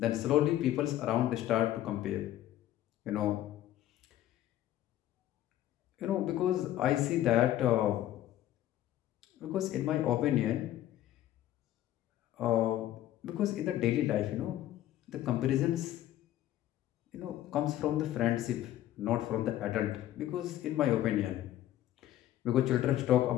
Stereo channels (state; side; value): quieter; right; 13.3 dB